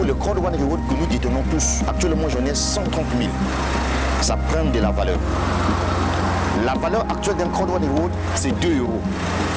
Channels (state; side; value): identical; both; correlation 1.00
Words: le Crowd1 Reward que nous détenons tous. Actuellement, j'en ai 130 000. Ça prend de la valeur. La valeur actuelle d'un Crowd1 Reward, c'est 2 euros.